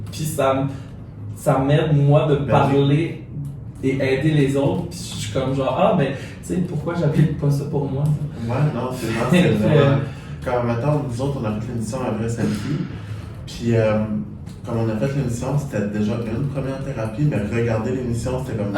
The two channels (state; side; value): identical; both; correlation 1.00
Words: puis ça m'aide, moi, de parler et aider les autres. Puis je suis comme genre, ah, ben, tu sais, pourquoi j'applique pas ça pour moi? Ouais, non, c'est vraiment. Comme maintenant, nous autres, on a fait l'émission à Vrai Selfie. Puis, comme on a fait l'émission, c'était déjà une première thérapie, mais regarder l'émission, c'était comme